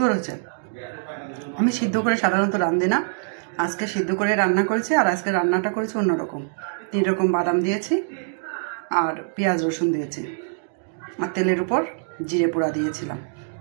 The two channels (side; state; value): left; silent; digital silence